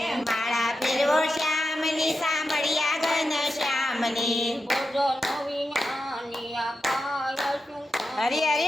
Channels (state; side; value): normal; both; correlation 0.89